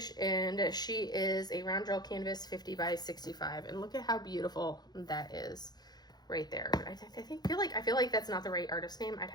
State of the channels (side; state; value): right; late; 0.20 ms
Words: and she is a round drill canvas 50 by 65. And look at how beautiful that is right there. I feel like that's not the right artist name. I'd